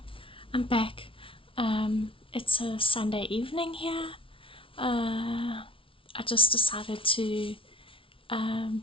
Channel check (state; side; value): late; right; 0.25 ms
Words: I'm back. It's a Sunday evening here. I just decided to